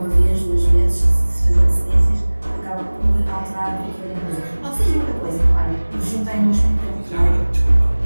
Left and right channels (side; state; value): both; inverted; correlation -1.00